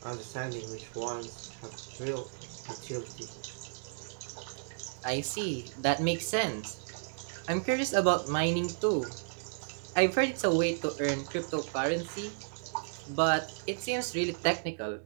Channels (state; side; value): silent; left; digital silence